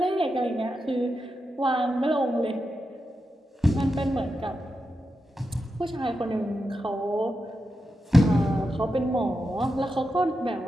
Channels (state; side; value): normal; both; correlation 0.88